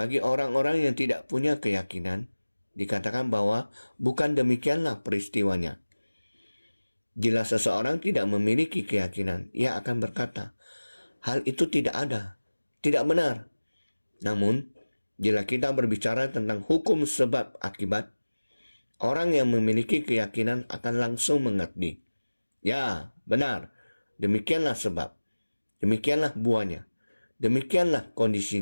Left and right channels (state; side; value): inverted; both; correlation -1.00